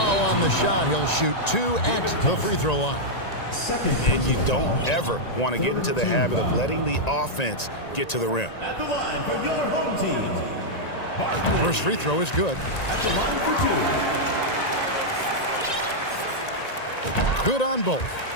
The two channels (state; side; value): late; right; 1.9 ms